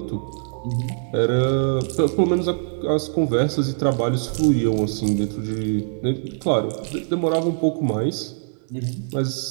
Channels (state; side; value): silent; left; 64 dB below the other